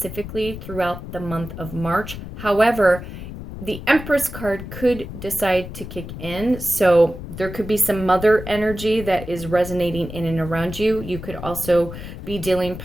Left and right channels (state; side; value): noise; left; rumble, 10 dB below the sound